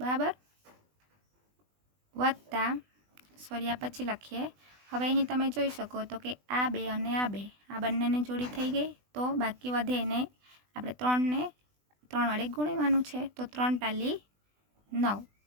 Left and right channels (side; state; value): left; late; 20 ms